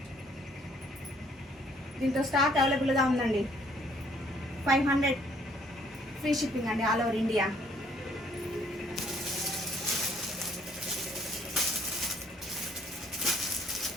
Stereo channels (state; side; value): normal; both; correlation 0.64